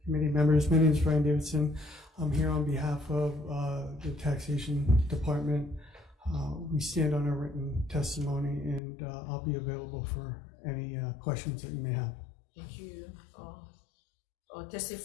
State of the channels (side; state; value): right; drops out; at 8.8 s